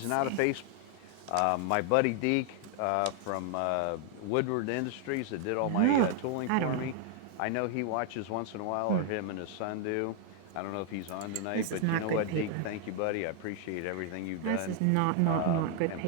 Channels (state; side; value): different; both; correlation 0.00